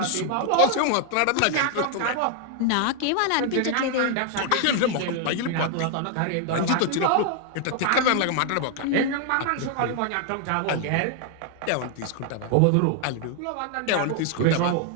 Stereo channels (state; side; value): different; both; correlation 0.00